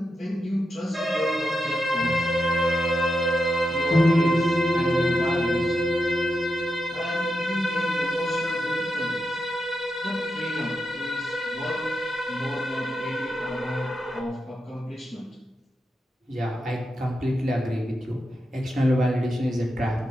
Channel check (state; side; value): normal; both; correlation 0.87